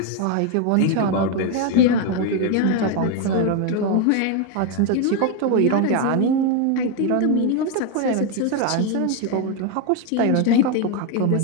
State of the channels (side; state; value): both; different; correlation 0.02